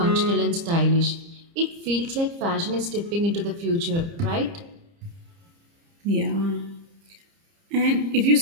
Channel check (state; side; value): late; left; 30 ms